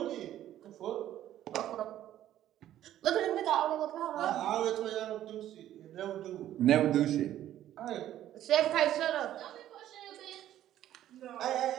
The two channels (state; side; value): quieter; left; 12.4 dB